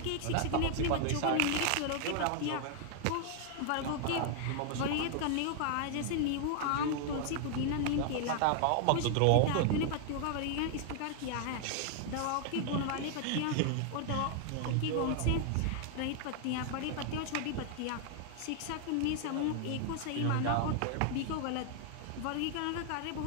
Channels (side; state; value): both; different; correlation 0.00